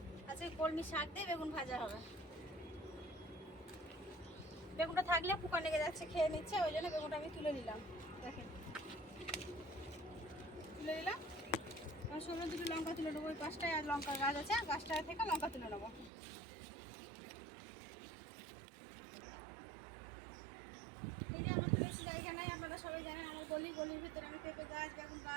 আজকে কলমি শাক দিয়ে বেগুন ভাজা হবে। বেগুনটা থাকলে পোকা লেগে যাচ্ছে, খেয়ে নিচ্ছে, ওই জন্য বেগুনটা আমি তুলে নিলাম। দেখেন তুলে নিলাম। ষোলো দুটো লঙ্কা তুলে নেবো। ওই পাঁচটায় আর লঙ্কা গাছ আছে, গাছটা থেকে লঙ্কা তুলে নেবো। এই যে আমার তো বেশি জায়গা নাই, আপনারা সবাই জানেন আমার গলির ভিতরে আমি পেঁপে গাছ, বেগুন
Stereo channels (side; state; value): left; drops out; at 16.1 s